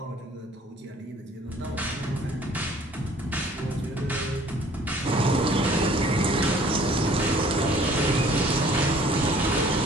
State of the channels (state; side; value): normal; both; correlation 0.55